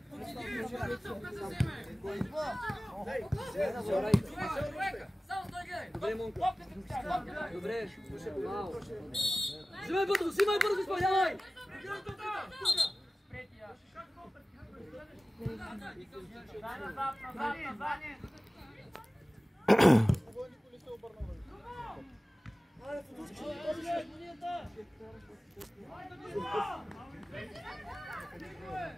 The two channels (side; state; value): both; normal; correlation 0.97